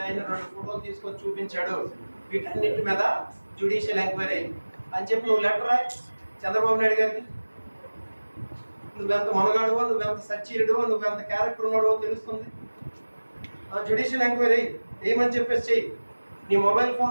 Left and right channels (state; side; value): inverted; both; correlation -1.00